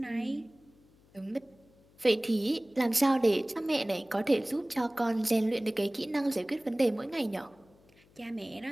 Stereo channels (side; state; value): left; noise; hum, 30 dB below the sound